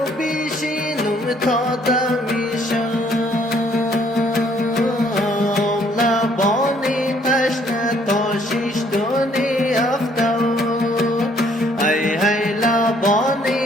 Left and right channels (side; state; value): both; normal; correlation 0.64